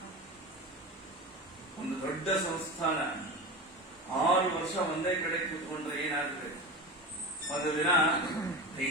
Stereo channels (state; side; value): normal; both; correlation 0.27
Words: ಒಂದು ದೊಡ್ಡ ಸಂಸ್ಥಾನ 6 ವರ್ಷ ಒಂದೇ ಕಡೆ ಕೂತ್ಕೊಂಡ್ರೆ ಏನಾಗುತ್ತೆ? ಒಂದು ದಿನ